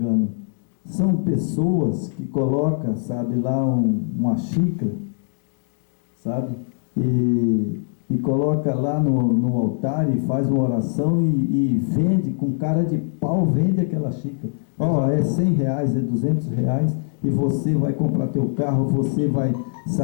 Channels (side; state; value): right; silent; digital silence